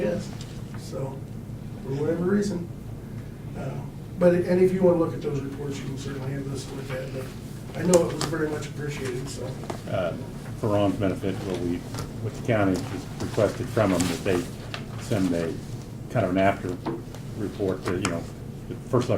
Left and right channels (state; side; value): identical; both; correlation 1.00